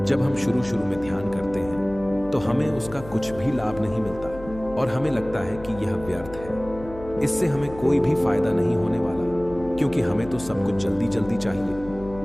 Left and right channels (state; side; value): noise; left; hum, 16 dB below the sound